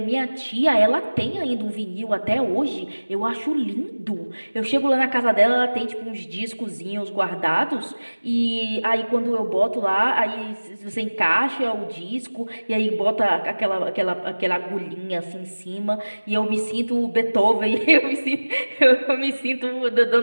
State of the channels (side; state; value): both; inverted; correlation -1.00